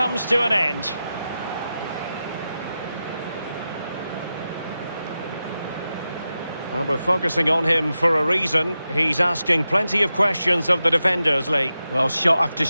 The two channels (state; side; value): inverted; both; correlation -0.91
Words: to an end. Well, we're focusing on him for a reason. He's asking plenty of questions of the defenders, Lee. Well, shot after